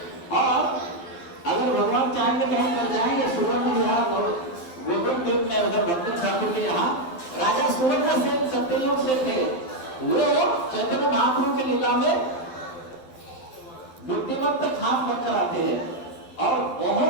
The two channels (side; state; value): right; late; 12 ms